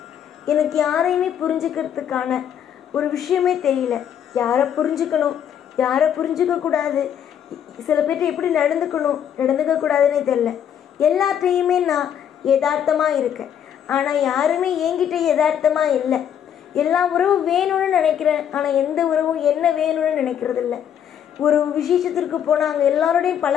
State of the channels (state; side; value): quieter; right; 9.2 dB